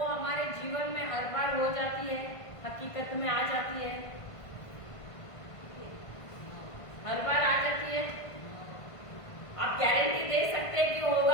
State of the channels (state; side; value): late; right; 1.5 ms